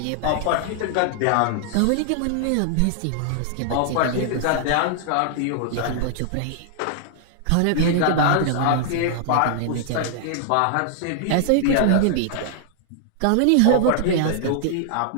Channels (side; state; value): both; different; correlation -0.01